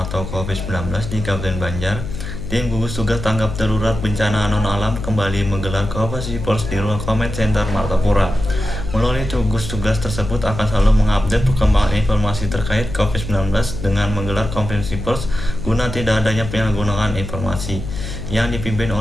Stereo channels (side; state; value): left; noise; hum, 7 dB below the sound